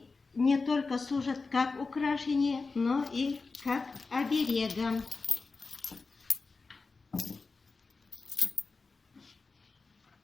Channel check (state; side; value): quieter; right; 4.1 dB